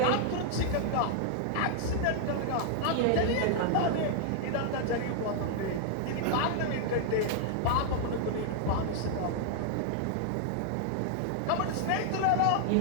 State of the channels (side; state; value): both; different; correlation -0.01